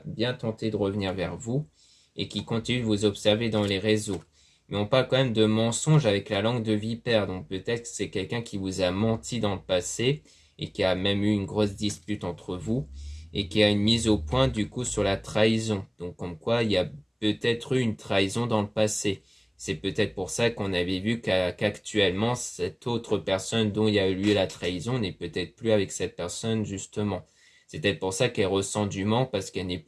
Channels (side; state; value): both; identical; correlation 1.00